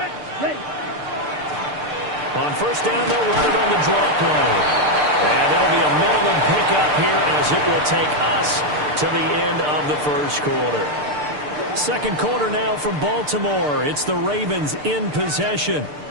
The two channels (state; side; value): late; left; 6.7 ms